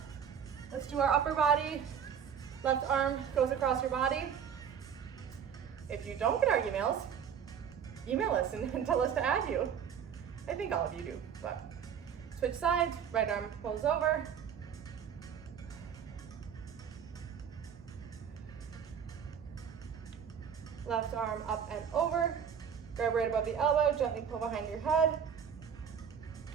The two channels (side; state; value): left; quieter; 7.8 dB